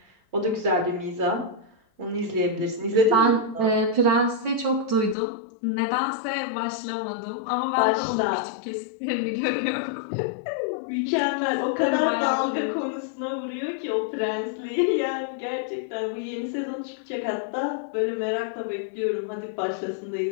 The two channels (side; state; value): right; drops out; at 5.2 s